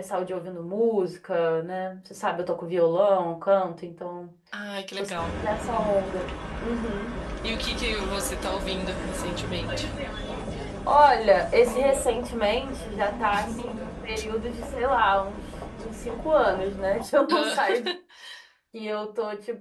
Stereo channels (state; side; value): identical; both; correlation 1.00